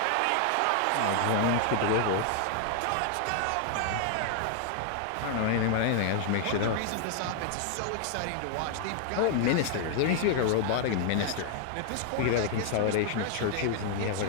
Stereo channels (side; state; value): both; different; correlation 0.00